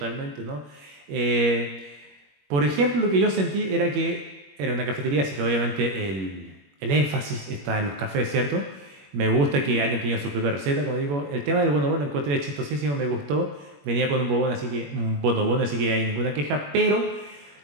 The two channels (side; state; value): left; late; 21 ms